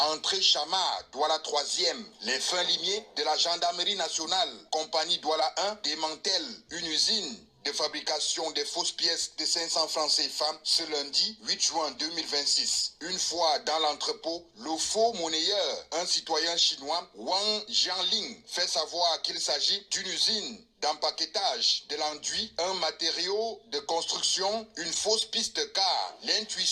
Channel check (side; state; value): both; identical; correlation 1.00